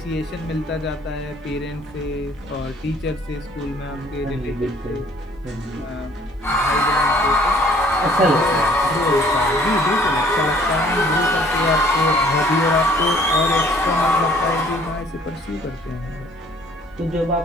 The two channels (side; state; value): both; normal; correlation 0.57